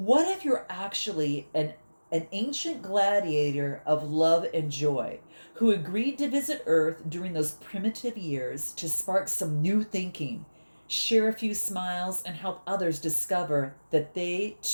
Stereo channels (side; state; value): both; inverted; correlation -1.00